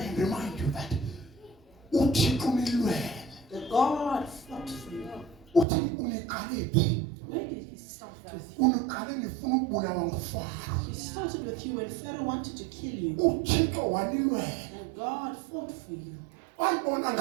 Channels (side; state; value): left; drops out; at 5.7 s